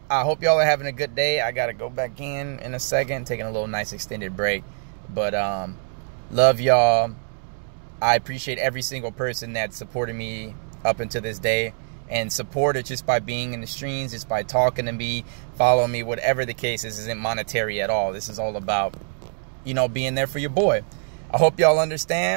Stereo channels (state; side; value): silent; left; 63 dB below the other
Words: I hope y'all are having a good day. I gotta go back in a second, taking a little nice extended break. But love y'all. I appreciate every single person that supported me up until this day, and support it just by being in the streams, just by talking to me, following me, whatever the case is. Isn't monetary at all. This is all about, you know, being there for your boy. I hope y'all